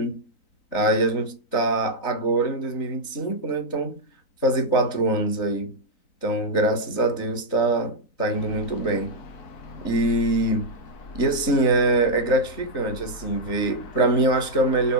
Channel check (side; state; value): right; late; 3.9 ms